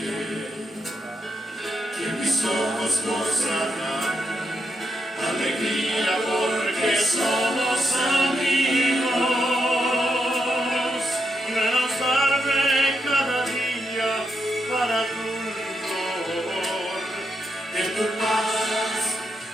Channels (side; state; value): both; normal; correlation 0.81